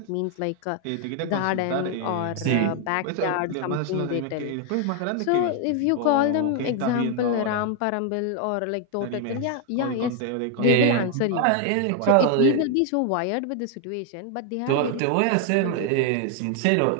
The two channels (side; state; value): both; different; correlation 0.00